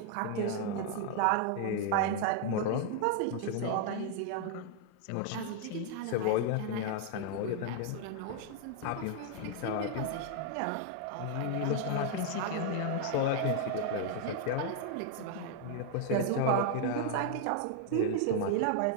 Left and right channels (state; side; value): different; both; correlation 0.00